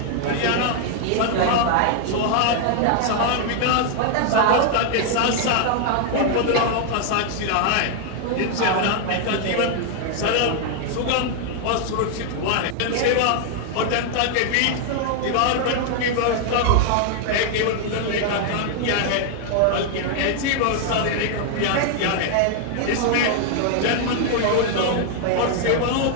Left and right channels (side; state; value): both; different; correlation 0.00